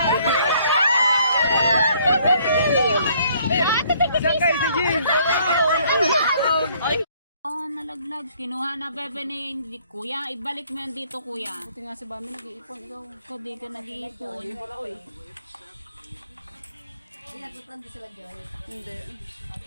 Saan kayo si Jim? Oh, nalaglag. Kinuha na bebe ni kuya. Ibalik mo yan dito, kuya. Buti nga si Bami nag-iipon. Ikaw. Ikaw di ka nag-iipon. Hindi.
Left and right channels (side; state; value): both; inverted; correlation -0.63